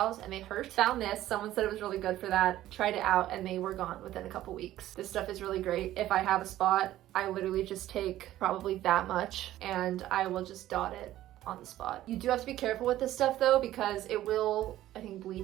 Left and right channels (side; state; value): left; quieter; 14.0 dB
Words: and they hurt. Found this, someone said it was really good for that, tried it out, and they were gone within a couple weeks. This stuff is really great. If I have a spot, I literally just take probably that much and I will just dot it on the spot. You do have to be careful with this stuff though, because it will, I think,